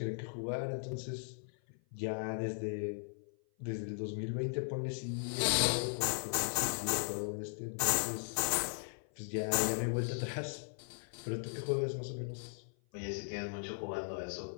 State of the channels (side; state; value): right; silent; 53 dB below the other